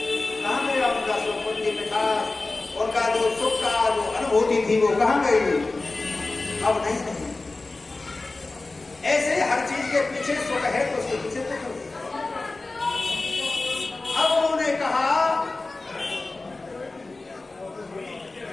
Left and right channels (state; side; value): quieter; right; 3.3 dB